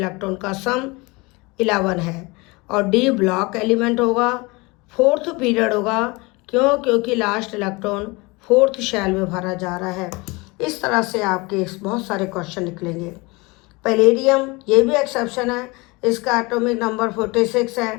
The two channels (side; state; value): right; quieter; 25.2 dB